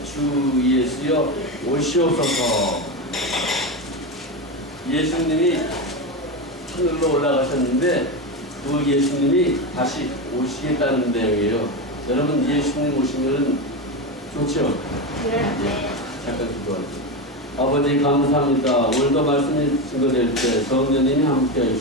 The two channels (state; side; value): normal; both; correlation 0.16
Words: 주 예수여 오시옵소서. 예수님이 하늘로 올라가셨는데 그 예수님이 다시 오시겠다는 내용이에요. 여러분 예수님 오시면 좋죠? 네. 잠깐 기도하죠. 아버지 감사합니다. 오늘도 말씀이 증거될 때 성령님이 함께